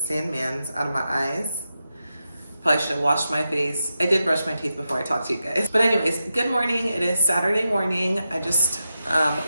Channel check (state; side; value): inverted; both; correlation -0.89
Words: out of my eyes. Probably should have washed my face. I did brush my teeth before I talked to you guys. But anyways, good morning. It is Saturday morning. I just